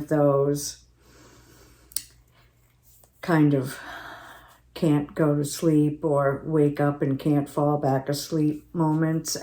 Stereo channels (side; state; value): both; identical; correlation 1.00